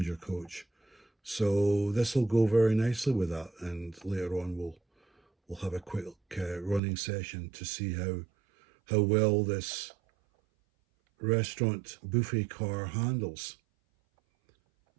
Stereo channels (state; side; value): drops out; left; at 6.8 s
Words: coach. So this will go very nicely with that. And later on we'll have a quick running session to see how well this restaurant buffet car handles.